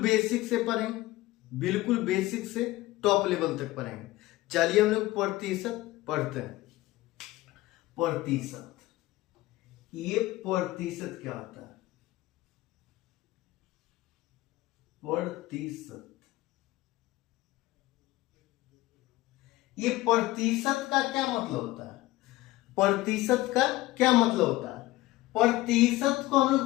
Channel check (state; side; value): quieter; right; 17.8 dB